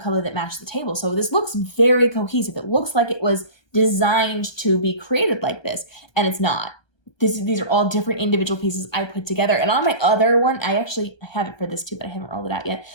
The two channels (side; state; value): right; late; 1.2 ms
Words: that matched the table. So this looks very cohesive. It looks like it was designed to be created like this, and it's not. These are all different individual pieces I put together. And on my other one, I actually have it for this too, but I haven't rolled it out yet.